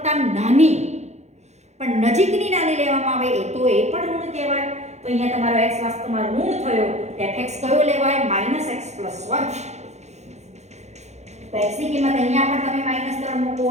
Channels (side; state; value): left; late; 0.33 ms